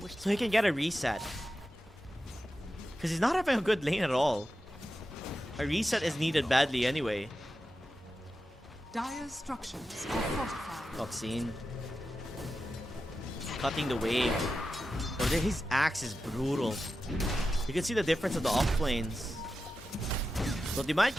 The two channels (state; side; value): normal; both; correlation 0.91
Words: so he can get a reset. Because he's not having a good lane at all. A reset is needed badly anyway. Dire's structures are fortified. Oxine. Cutting the wave. Oh, his axe is brutal. You can see the difference of the off lanes. So they might